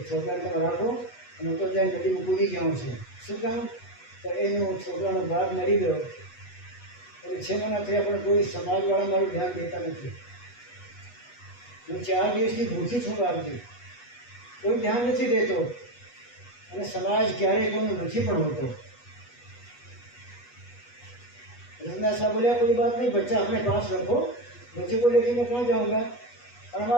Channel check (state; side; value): late; right; 8.2 ms